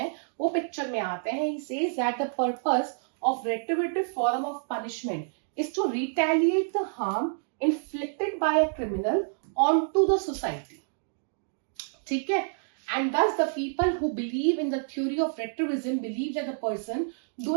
वो पिक्चर में आते हैं। He says that the purpose of retributive form of punishment is to retaliate the harm inflicted by a criminal onto the society. ठीक है, and thus the people who believe in the theory of retribution believe that the person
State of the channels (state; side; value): silent; left; digital silence